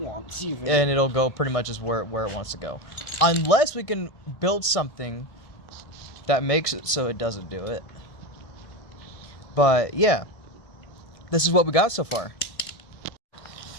even. And it'll go pretty much as where it wants to go. Unless we can build something that makes it so it doesn't do it. But yeah, this is what we got so far.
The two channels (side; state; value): right; late; 1.7 ms